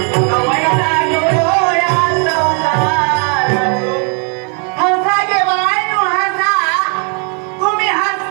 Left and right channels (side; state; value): left; quieter; 39.4 dB